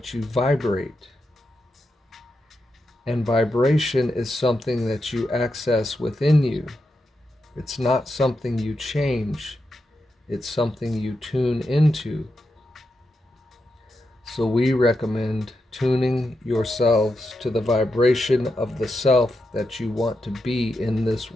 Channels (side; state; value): both; normal; correlation 0.86